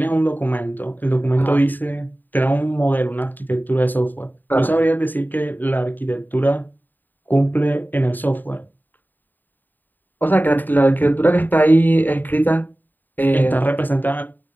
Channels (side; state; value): right; late; 0.089 ms